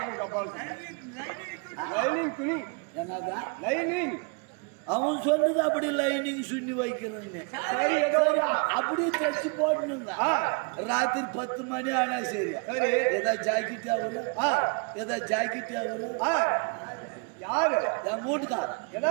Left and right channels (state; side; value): quieter; left; 35.0 dB